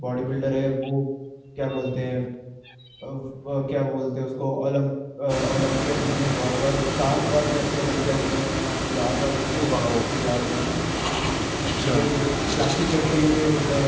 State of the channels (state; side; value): identical; both; correlation 1.00